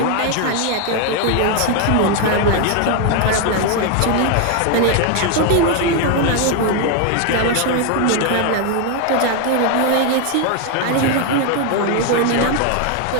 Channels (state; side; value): different; both; correlation 0.01